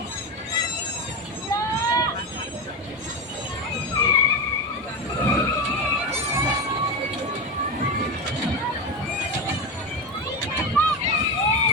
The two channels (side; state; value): both; normal; correlation 0.17